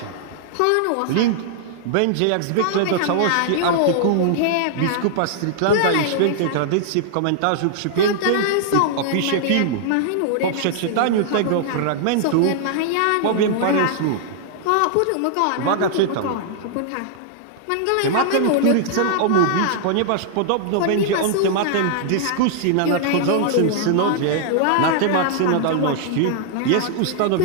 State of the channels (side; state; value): both; different; correlation -0.01